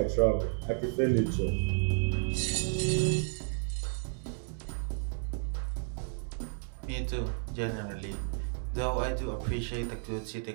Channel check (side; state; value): left; silent; digital silence